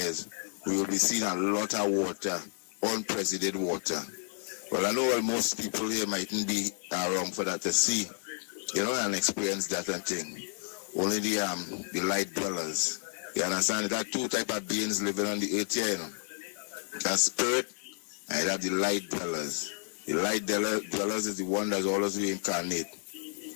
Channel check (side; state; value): right; silent; 57 dB below the other